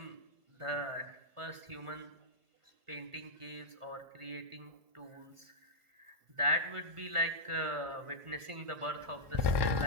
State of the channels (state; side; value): late; left; 1.5 ms